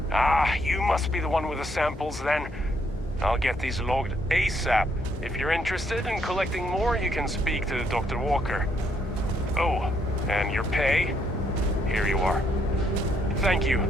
Ah, you must be the one with the samples then. I'll get these logged ASAP. If you're interested in collecting more, you can speak to Dr. Walker. Oh, and your pay? Here you are. Thank you,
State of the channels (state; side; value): normal; both; correlation 0.72